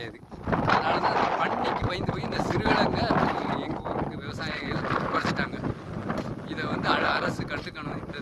அதனால தான் பன்னிக்கு பயந்து போய் இந்த சிறுகிழங்கை எங்கள் ஊருக்கு விவசாயிகள் குறைச்சிட்டாங்க. இதை வந்து அரசு கற்றுக்கணும்.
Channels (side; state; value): both; identical; correlation 1.00